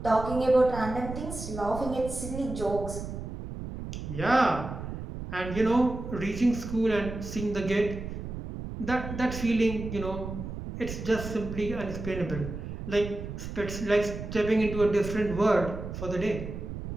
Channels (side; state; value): right; noise; rumble, 8 dB below the sound